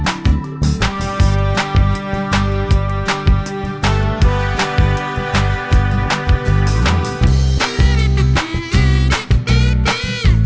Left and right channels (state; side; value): identical; both; correlation 1.00